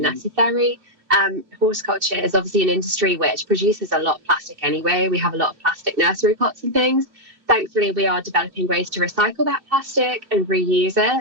Horticulture is obviously an industry which produces a lot of plastic anyway. We have a lot of plastic nursery pots and things. Thankfully, we are developing ways to recycle that plastic and reuse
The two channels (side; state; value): left; late; 2.7 ms